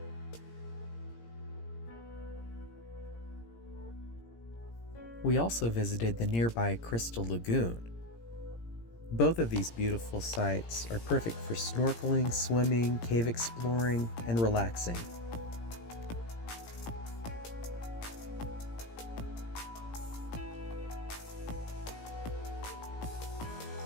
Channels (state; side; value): late; right; 17 ms